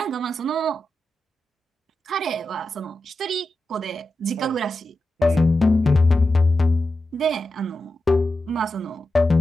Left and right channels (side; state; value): both; normal; correlation 0.90